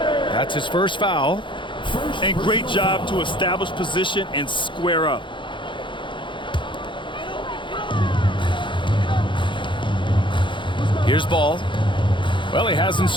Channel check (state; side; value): late; right; 0.23 ms